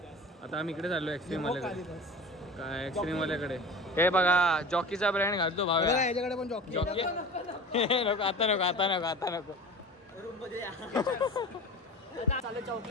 आता आम्ही इकडे चाललो एक्स्ट्रीम वाल्याकडे. काय एक्स्ट्रीम वाल्याकडे. हे बघा जॉकीचा ब्रँड घालतो भाव. याच्याकडे पण जॉकी. नको आता नको. चालू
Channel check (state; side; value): normal; both; correlation 0.36